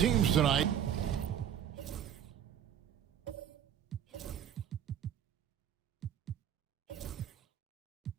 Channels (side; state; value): left; quieter; 9.3 dB